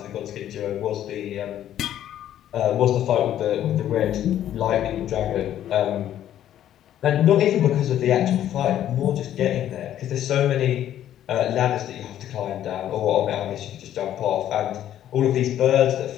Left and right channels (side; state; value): right; quieter; 11.4 dB